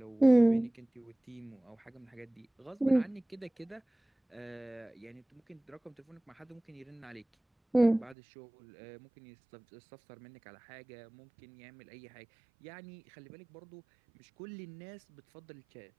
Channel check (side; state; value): left; drops out; at 8.2 s